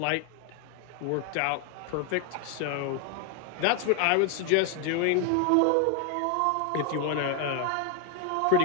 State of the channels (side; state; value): both; different; correlation 0.00